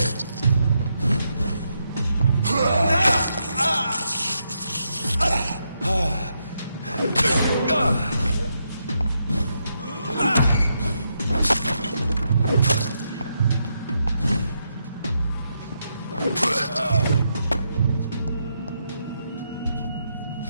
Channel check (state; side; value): inverted; both; correlation -0.81